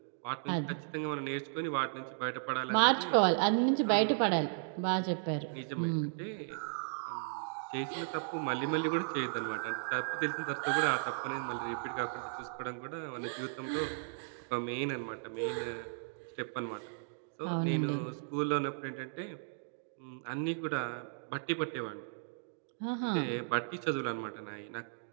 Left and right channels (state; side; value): silent; left; digital silence